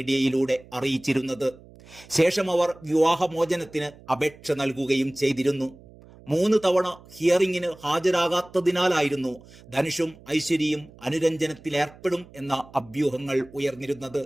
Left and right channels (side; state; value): right; noise; hum, 22 dB below the sound